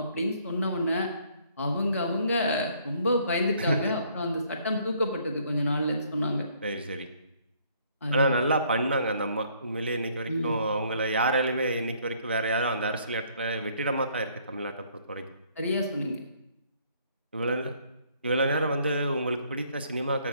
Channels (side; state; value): both; inverted; correlation -0.64